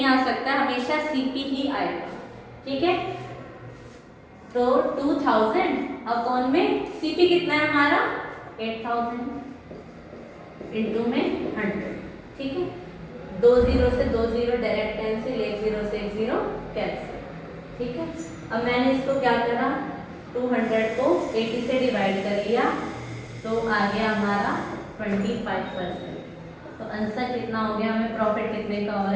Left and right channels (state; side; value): identical; both; correlation 1.00